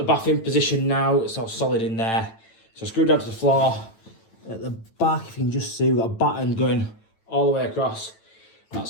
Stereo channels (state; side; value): late; right; 9.0 ms